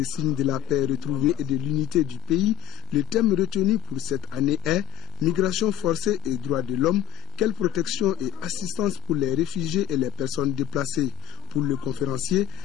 signes de la paix retrouvée et de l'unité du pays, le thème retenu pour cette année est « Migration forcée et droits de l'homme, quelle protection et assistance pour les réfugiés et les personnes déplacées ?» Pour le conférencier,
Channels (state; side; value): quieter; right; 16.7 dB